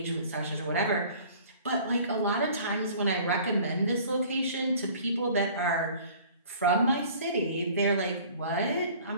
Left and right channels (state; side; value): inverted; both; correlation -0.49